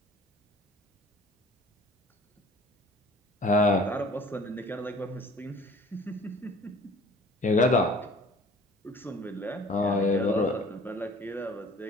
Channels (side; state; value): both; normal; correlation 0.49